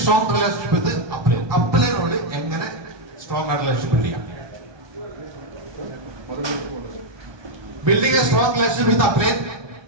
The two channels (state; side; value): late; left; 1.3 ms